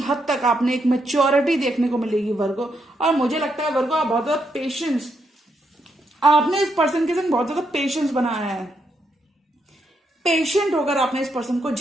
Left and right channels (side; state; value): both; normal; correlation 0.79